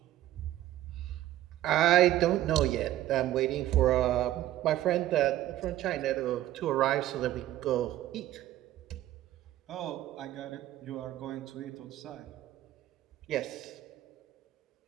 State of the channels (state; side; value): quieter; left; 14.0 dB